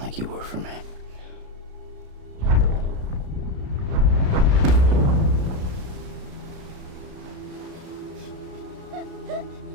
you were for me.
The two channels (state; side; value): late; left; 33 ms